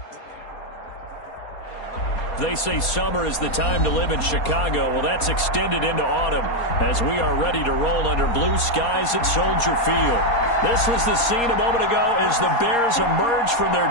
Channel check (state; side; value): late; right; 4.2 ms